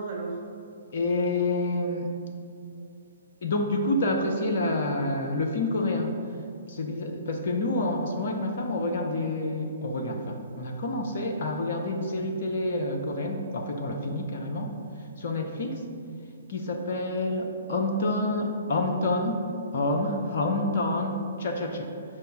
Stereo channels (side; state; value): both; inverted; correlation -0.48